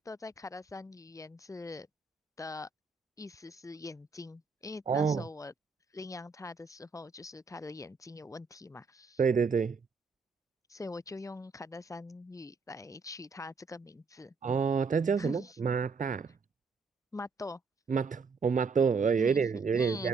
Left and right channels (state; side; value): quieter; left; 4.9 dB